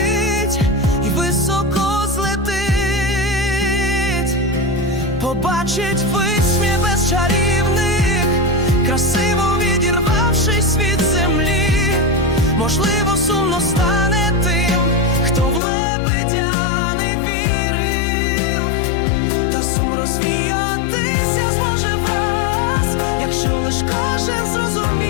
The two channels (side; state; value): right; drops out; at 15.6 s